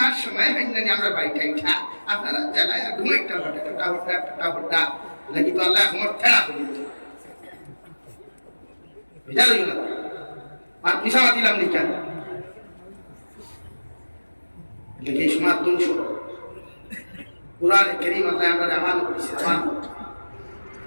আর সময় হয় না আমরা বাড়িটা ইঠা আপনারা জায়গায় আর ঘুম একটা হটা নাকি তো আল্লাহ আমার ঠেলা করে দিত বুঝা লইল না আর পিছামা দিলাম নি কেন দেখি সমাজ ধ্বংস কোরআনে কারীম আল্লাহ আমরা আমান করেছি আমান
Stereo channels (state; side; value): inverted; both; correlation -1.00